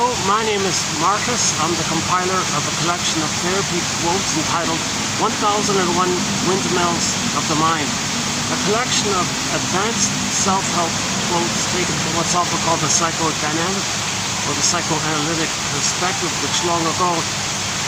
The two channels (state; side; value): identical; both; correlation 1.00